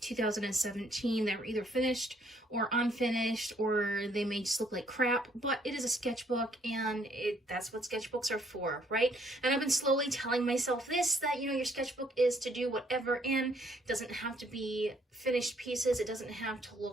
2017 that were either finished or unfinished, or they may just look like crap, but it is a sketchbook and that's what sketchbooks are for, right? And I've been slowly telling myself this, that, you know, your sketchbook is to do whatever, and it doesn't have to be finished pieces, it doesn't have to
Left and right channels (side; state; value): both; normal; correlation 0.66